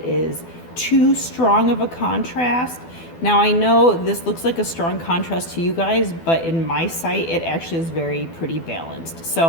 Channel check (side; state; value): right; late; 12 ms